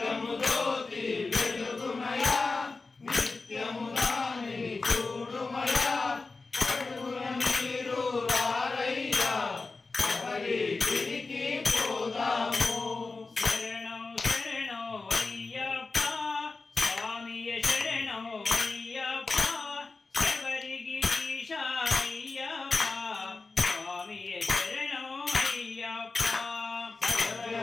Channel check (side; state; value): right; quieter; 3.9 dB